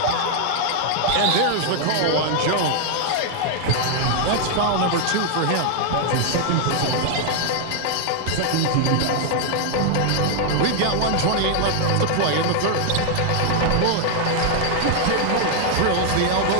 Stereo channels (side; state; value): both; different; correlation 0.00